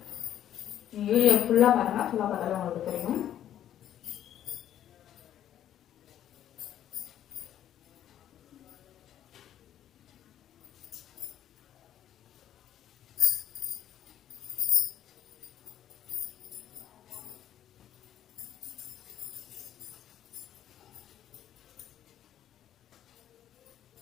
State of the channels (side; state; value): right; quieter; 11.1 dB